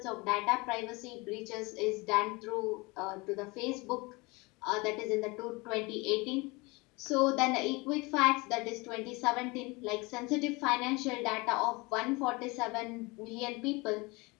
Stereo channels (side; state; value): right; quieter; 25.5 dB